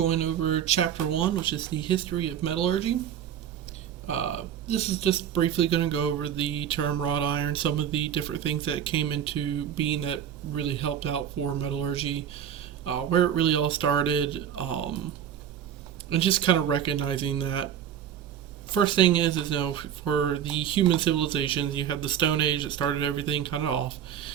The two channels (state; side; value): quieter; left; 9.4 dB